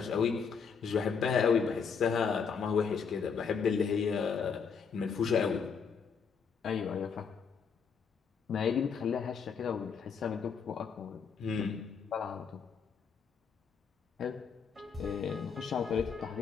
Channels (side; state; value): right; quieter; 6.1 dB